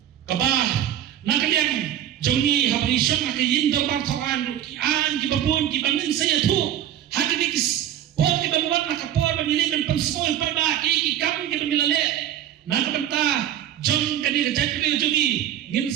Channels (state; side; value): quieter; left; 11.1 dB